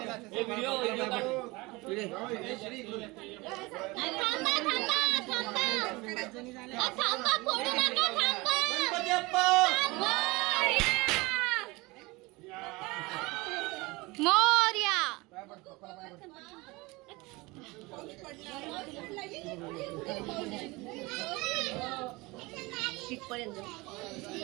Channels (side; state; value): left; quieter; 23.4 dB